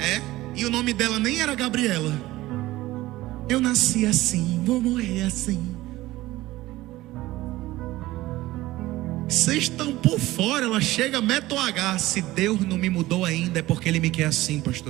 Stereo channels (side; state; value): left; quieter; 17.4 dB